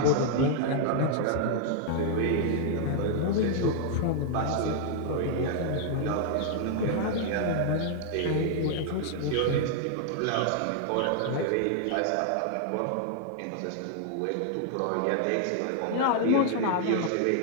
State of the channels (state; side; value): different; both; correlation -0.01